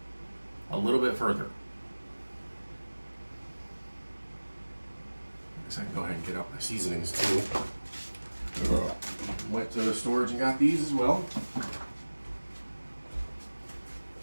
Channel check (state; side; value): inverted; both; correlation -1.00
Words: a little bit further. I guess I can go ahead and get out my seasonings too. Went to the storage and got these as well.